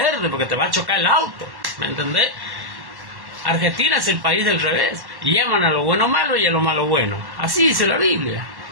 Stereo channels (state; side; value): late; left; 1.1 ms